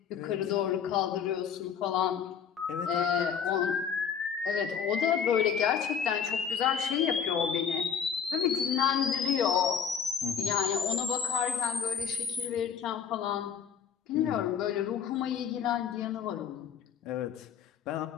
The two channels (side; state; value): right; quieter; 7.5 dB